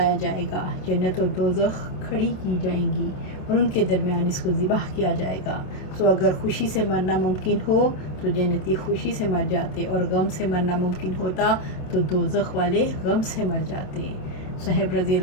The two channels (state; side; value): late; right; 27 ms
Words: جائے گا، جنت اور دوزخ کھڑی کی جائیں گی اور ان کے درمیان اس کو ذبح کیا جائے گا۔ سو اگر خوشی سے مرنا ممکن ہو تو جنتی خوشی سے مر جاتے، اور غم سے مرنا ممکن ہوتا تو دوزخ والے غم سے مر جاتے۔ صہیب رضی